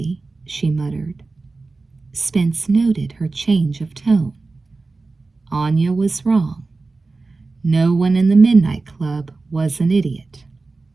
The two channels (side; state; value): left; quieter; 3.7 dB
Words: she muttered. Spence noted her change of tone. Anya was wrong. No one in the Midnight Club was an idiot,